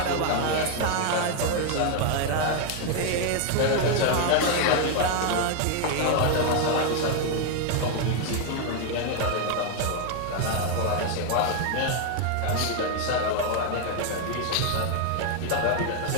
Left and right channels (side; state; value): both; different; correlation 0.01